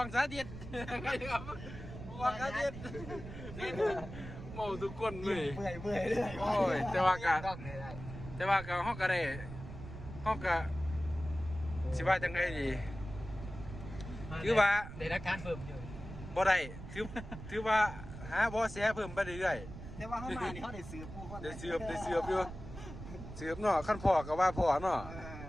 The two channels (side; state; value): right; noise; rumble, 11 dB below the sound